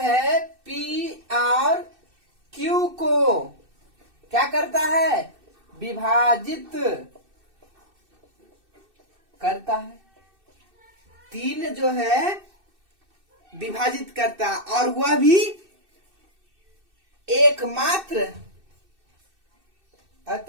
पी और क्यू को क्या करता है, विभाजित करता है। 3 जो है विभाजित करता, और वह भी एकमात्र,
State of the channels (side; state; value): left; late; 2.6 ms